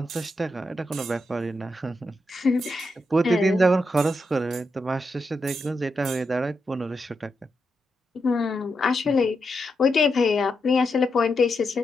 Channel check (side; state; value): both; normal; correlation 0.85